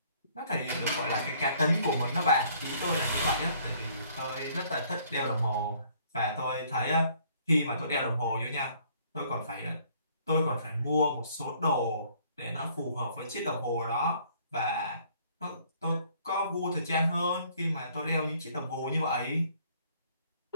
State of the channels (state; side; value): inverted; both; correlation -0.60